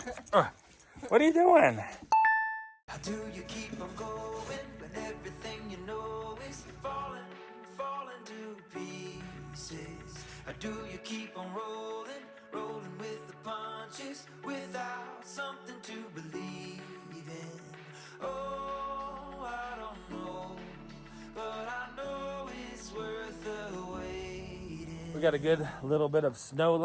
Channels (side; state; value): both; identical; correlation 1.00